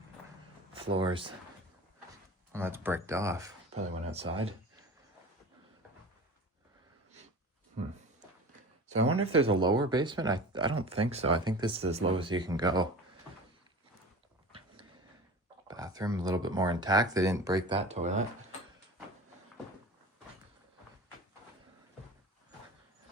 floors. Well, that's bricked off. Probably went outside. So I wonder if there's a lower basement. I don't think so. I think this is as low as you can go. Bathroom a little bit more intact. They didn't break that toilet.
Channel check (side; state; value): both; normal; correlation 0.36